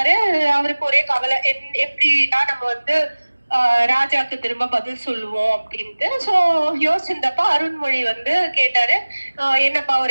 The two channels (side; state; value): both; inverted; correlation -1.00